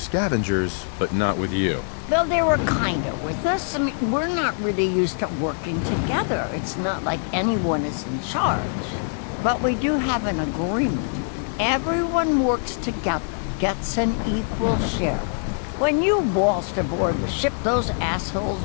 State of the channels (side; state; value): right; silent; digital silence